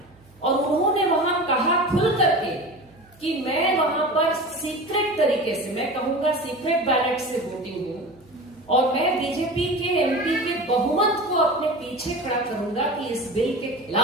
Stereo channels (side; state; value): right; noise; hum, 28 dB below the sound